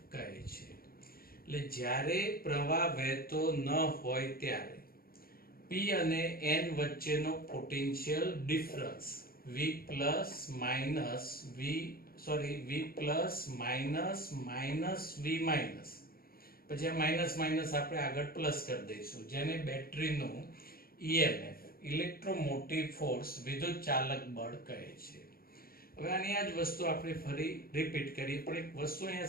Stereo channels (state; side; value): late; right; 0.43 ms